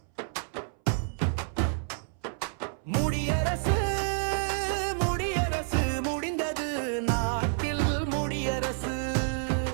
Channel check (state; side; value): silent; left; 58 dB below the other